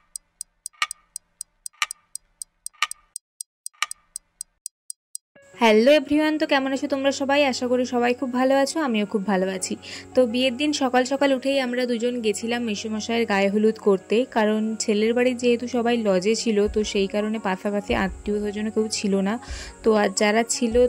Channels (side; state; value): both; identical; correlation 1.00